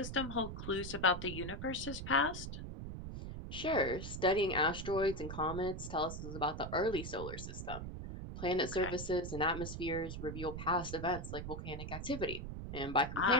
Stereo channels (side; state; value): right; noise; rumble, 7 dB below the sound